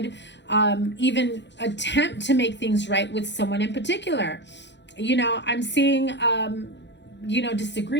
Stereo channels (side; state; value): right; late; 0.52 ms